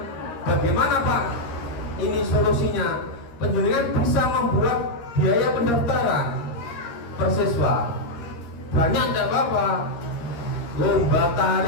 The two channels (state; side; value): late; right; 13 ms